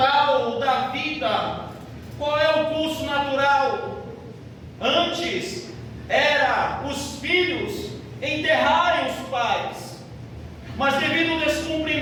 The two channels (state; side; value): identical; both; correlation 1.00